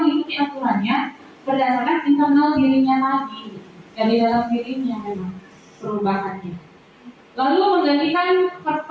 mengikuti aturannya berdasarkan internal dirinya tadi, dari dalam dirinya memang perubahannya. Lalu menggantikan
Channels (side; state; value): both; identical; correlation 1.00